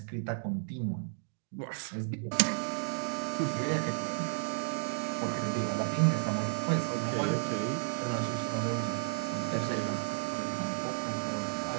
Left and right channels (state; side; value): silent; left; digital silence